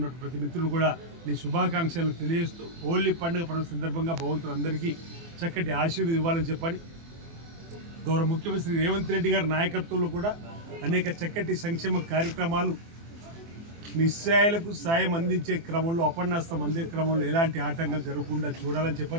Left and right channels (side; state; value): left; late; 24 ms